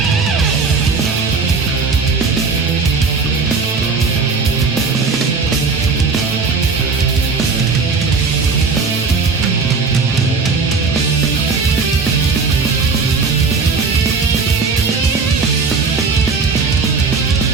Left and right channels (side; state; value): left; quieter; 4.6 dB